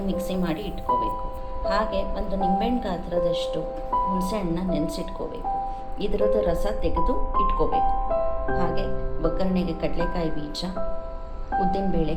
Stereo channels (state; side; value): identical; both; correlation 1.00